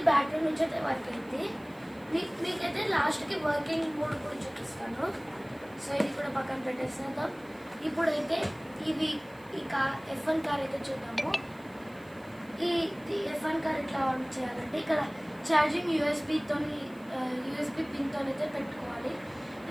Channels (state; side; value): noise; right; hiss, 28 dB below the sound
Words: బ్యాటరీ నుంచి అయితే వర్క్ అయింది. మీకైతే లాస్ట్కి వర్కింగ్ మోడ్ కూడా చూపిస్తాను. సో ఇది కూడా పక్కన పెట్టేస్తాం. ఇప్పుడైతే ఈ F1 కార్ అయితే చూద్దాము. ఈ F1 కార్ ఎట్లా ఆన్ చేయాలంటే ఇక్కడ ఛార్జింగ్ యూఎస్బీ పిన్తో అయితే పెట్టుకోవాలి.